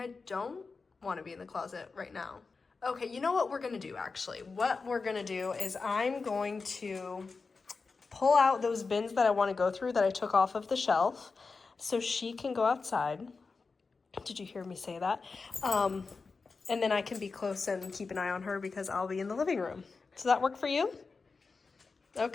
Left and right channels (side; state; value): right; quieter; 4.4 dB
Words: don't want to be in the closet right now. Okay, you know what we're gonna do actually? What we're gonna do is I'm going to pull out those bins that I want to go through that I took off of the shelf so she can go outside. Did you hear me say that? And then I can be close and keep an eye on her because I'll be in the living room. Does that work for you?